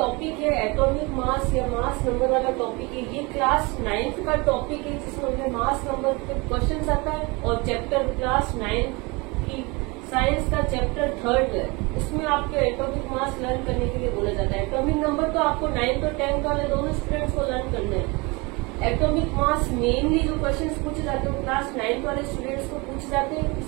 है एटॉमिक मास या मास नंबर वाला टॉपिक है, ये क्लास 9th का टॉपिक है जिसमें हमें मास नंबर पे क्वेश्चन आता है. और चैप्टर क्लास 9 की साइंस का चैप्टर 3rd है, उसमें आपके एटॉमिक मास लर्न करने के लिए बोला जाता है. एटॉमिक नंबर तो आपको 9th और 10th वाले दोनों स्टूडेंट्स को लर्न करना है. एटॉमिक मास मेनली जो क्वेश्चंस पूछे जाते हैं वो क्लास 9th वाले स्टूडेंट्स को पूछे जाते हैं.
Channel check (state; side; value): quieter; left; 26.5 dB